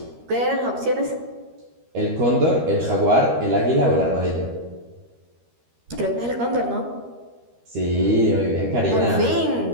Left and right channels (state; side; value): late; left; 13 ms